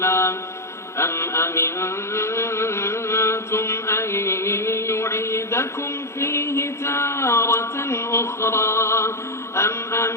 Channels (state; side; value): late; right; 0.13 ms